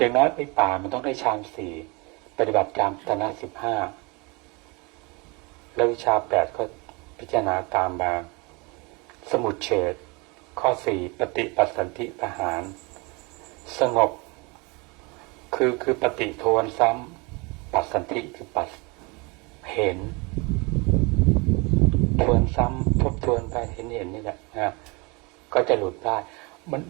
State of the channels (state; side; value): quieter; left; 28.1 dB